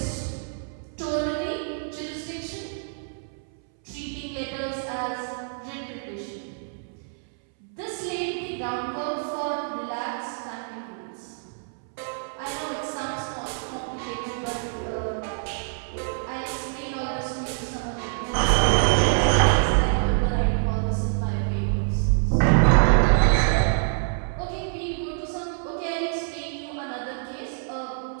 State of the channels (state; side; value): silent; left; 61 dB below the other